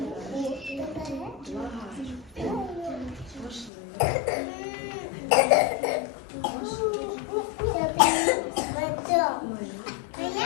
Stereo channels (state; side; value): drops out; right; at 3.7 s